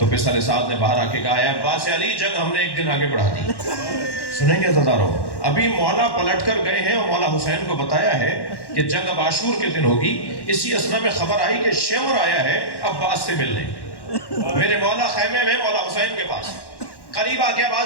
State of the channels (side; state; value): right; late; 1.1 ms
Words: پسر سعد نے باہر آ کے کہا ہے عباس علی، جنگ ہم نے ایک دن آگے بڑھا دی۔ سنیں گے عزادارو، ابھی مولا پلٹ کر گئے ہیں اور مولا حسین کو بتایا ہے کہ جنگ اب عاشور کے دن ہوگی۔ اسی اسنا میں خبر آئی کہ شیور آیا ہے عباس سے ملنے۔ میرے مولا خیمے میں مولا حسین کے پاس قریب آ کے